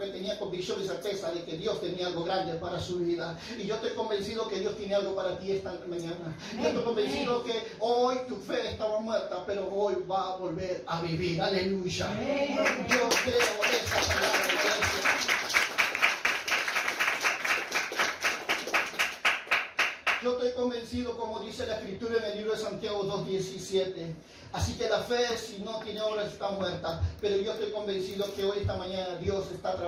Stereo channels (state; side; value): identical; both; correlation 1.00